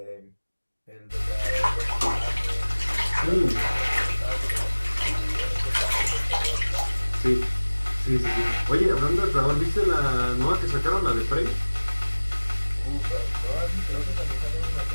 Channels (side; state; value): both; inverted; correlation -1.00